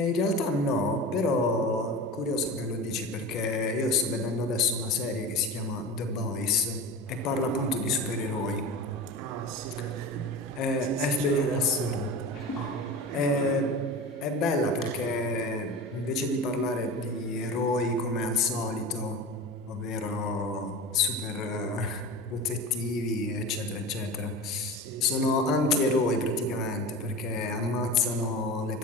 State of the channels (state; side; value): normal; both; correlation 0.31